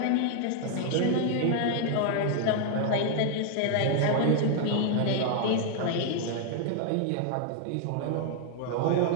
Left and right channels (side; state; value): both; different; correlation 0.00